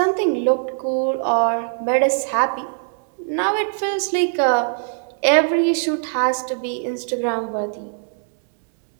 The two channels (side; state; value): left; silent; digital silence